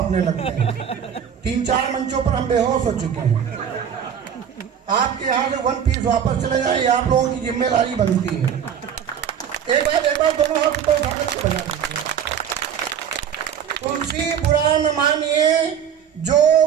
लगते हैं। 3-4 मंचों पर हम बेहोश हो चुके हैं। आपके यहाँ से 1 पीस वापस चले जाए, ये आप लोगों की जिम्मेदारी बनती है। एक बार दोनों हाथ ऊपर उठा करके बजा दीजिए। तुलसी बुरा न मानिए जो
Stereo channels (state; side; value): quieter; left; 8.4 dB